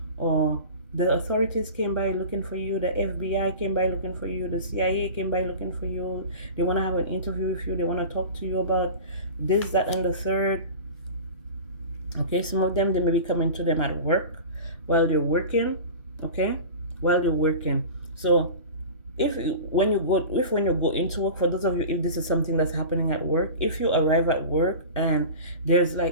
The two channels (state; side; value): inverted; both; correlation -0.34